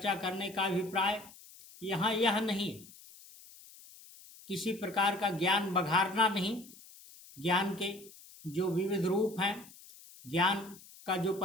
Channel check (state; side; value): noise; left; hiss, 21 dB below the sound